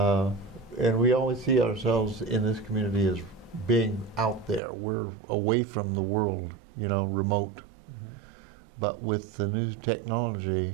we always see ourselves in this community as being out there. We're away from the world, remote. But with the new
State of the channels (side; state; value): left; drops out; at 4.6 s